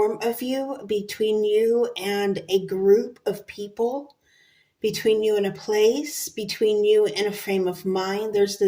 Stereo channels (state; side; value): identical; both; correlation 1.00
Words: of you, between you and a group of people, between you and a place, between you and a frame of mind. There's